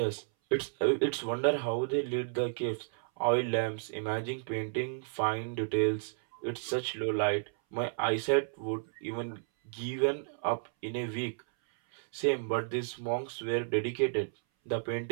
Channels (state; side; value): silent; left; 56 dB below the other